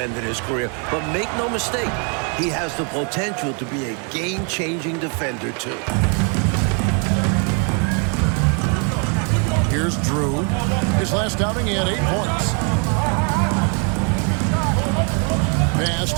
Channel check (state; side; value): quieter; left; 37.1 dB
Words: of his career, but make no mistake, he has the potential to be a game-changing defender, too. Here's Drew. His last outing, he had 8 points. Pass